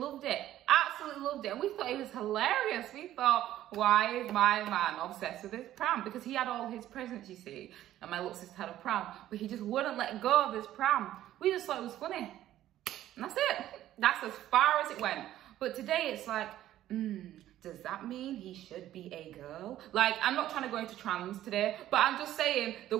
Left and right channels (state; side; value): quieter; left; 13.1 dB